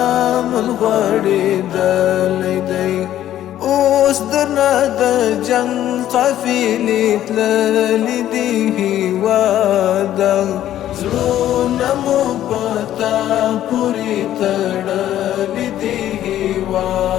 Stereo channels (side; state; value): right; quieter; 12.2 dB